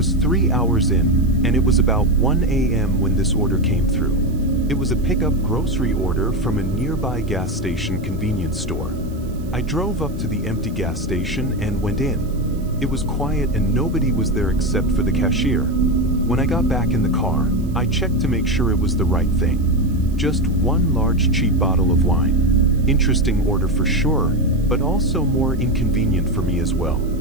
3 hours in, and it was about 1 a.m. when this order came through. It was a pickup grocery order from a nearby gas station convenience store. I drove up to the empty gas station and went in. It was quiet and nobody was there except for the cashier. When I got back in the car, I checked to make sure it was the right thing. Just one large cheap bottle of wine. Interesting order for sure, but also more inconvenient for me as well.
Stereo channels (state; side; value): noise; right; hiss, 26 dB below the sound